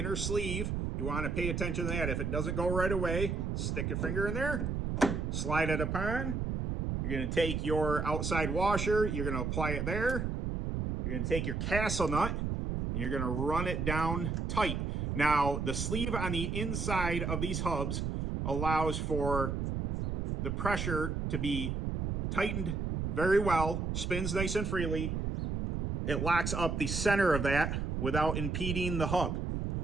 sleeve. You want to pay attention to that. If it doesn't go right away, stick your finger in there, slide it upon. You're going to take your outside washer, you're going to apply it there. You're going to take your castle nut, and you're going to run it down tight. Now, the sleeve on the inside of these hubs allows for the pressure to be tightened very well, spins nice and freely. It locks up the center of that without impeding the hub.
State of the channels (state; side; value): noise; right; rumble, 1 dB below the sound